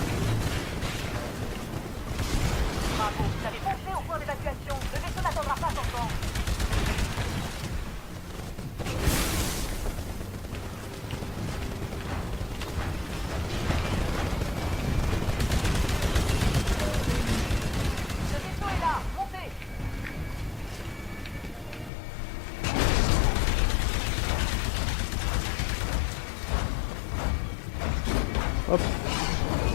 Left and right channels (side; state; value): right; drops out; at 21.9 s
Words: Bravo, vous avez foncé au point d'évacuation. Le vaisseau n'attendra pas son temps. Le vaisseau est là, montez. hop.